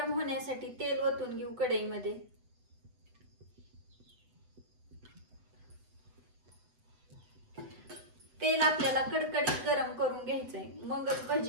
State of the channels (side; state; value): left; late; 8.0 ms